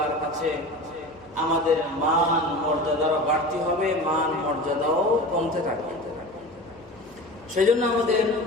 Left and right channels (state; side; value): noise; left; hum, 27 dB below the sound